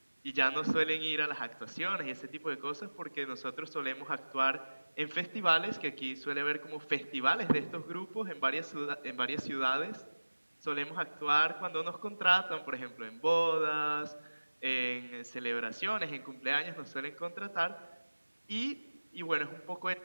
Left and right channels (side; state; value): both; inverted; correlation -1.00